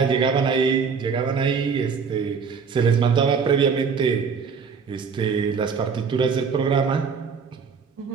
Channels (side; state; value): left; quieter; 5.8 dB